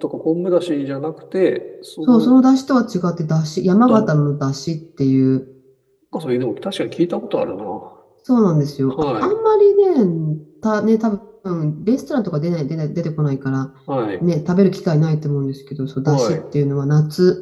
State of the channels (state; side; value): identical; both; correlation 1.00